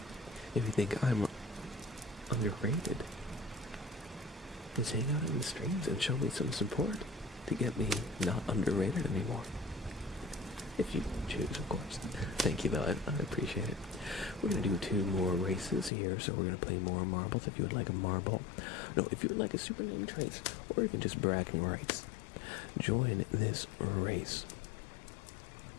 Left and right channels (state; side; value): drops out; right; at 15.9 s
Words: If you think I'm underrated, is hang out in the streams and show me some support to get me not underrated anymore. If you choose, of course. Thank you, though. I appreciate it. We're going to do 2 more races here, so we're going to play more marbles. If you would like a marble, no, if you would like a super name trace, or even just bragging rights, join this race.